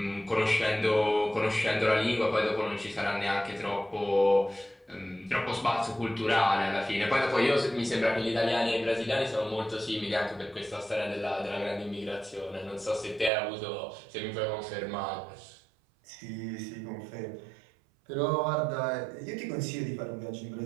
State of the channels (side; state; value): left; drops out; at 13.3 s